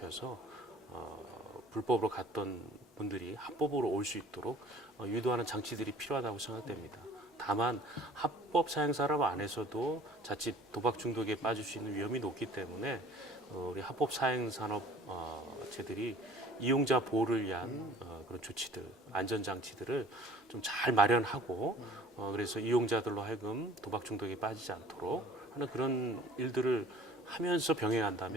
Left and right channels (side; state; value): both; normal; correlation 0.50